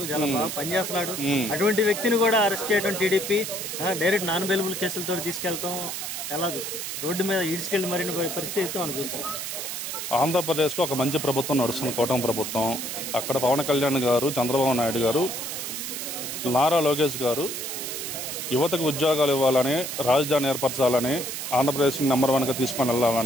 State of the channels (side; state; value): right; noise; hiss, 5 dB below the sound